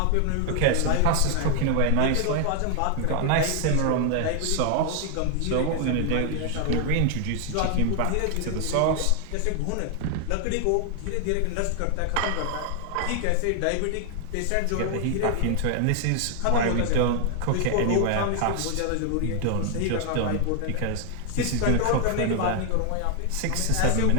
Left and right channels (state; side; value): different; both; correlation 0.00